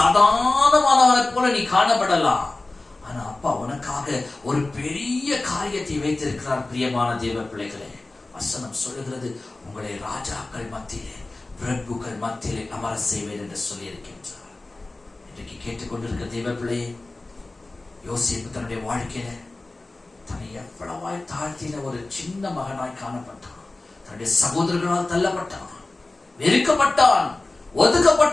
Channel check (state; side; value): quieter; right; 3.1 dB